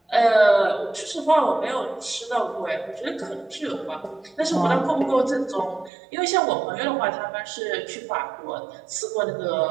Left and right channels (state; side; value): drops out; left; at 5.9 s